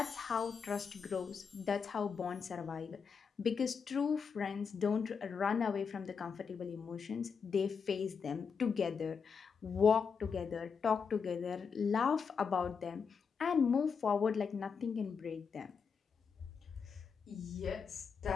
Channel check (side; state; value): right; quieter; 6.0 dB